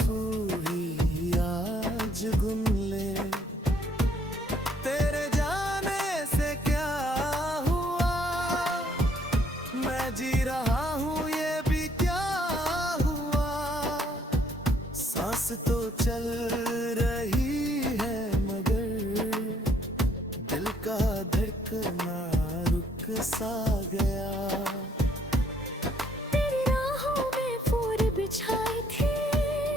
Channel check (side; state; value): both; normal; correlation 0.66